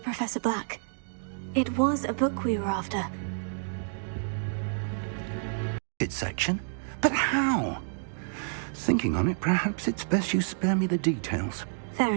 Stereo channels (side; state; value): left; silent; digital silence